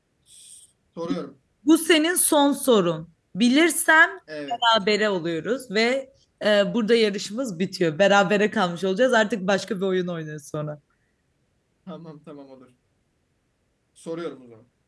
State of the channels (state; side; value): identical; both; correlation 1.00